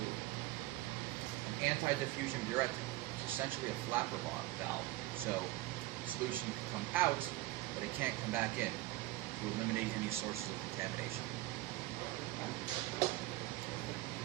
anti-diffusion burette. It's essentially a flapper valve. So the solution can come out, but it can't come back in to eliminate any sources of contamination. Okay.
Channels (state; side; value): quieter; left; 17.9 dB